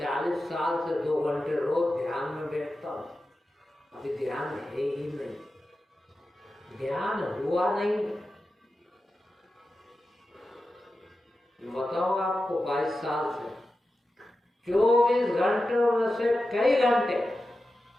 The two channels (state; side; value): normal; both; correlation 0.92